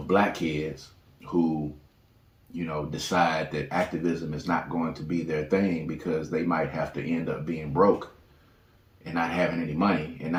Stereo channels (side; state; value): both; identical; correlation 1.00